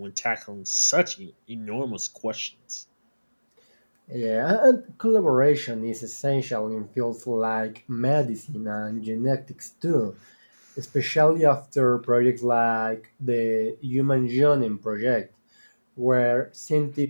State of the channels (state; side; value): inverted; both; correlation -1.00